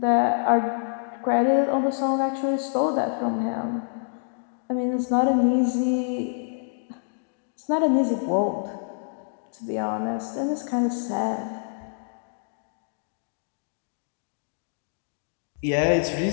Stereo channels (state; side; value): silent; right; digital silence